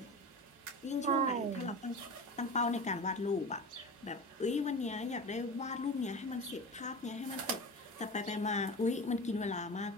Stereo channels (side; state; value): both; normal; correlation 0.30